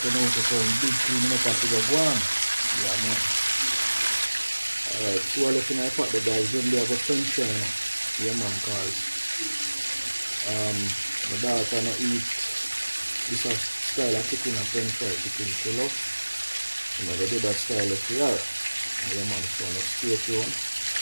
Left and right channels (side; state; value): both; inverted; correlation -1.00